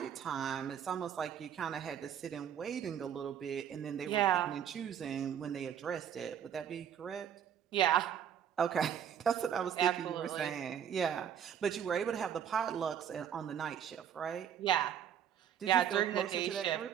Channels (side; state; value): left; quieter; 9.0 dB